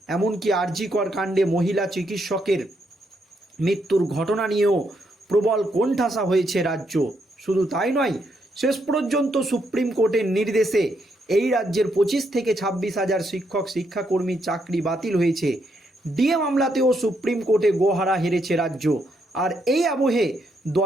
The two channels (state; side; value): normal; both; correlation 0.77